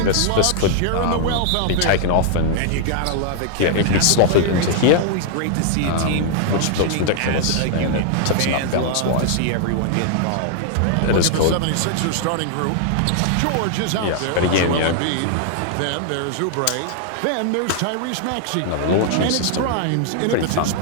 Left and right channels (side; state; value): both; different; correlation -0.01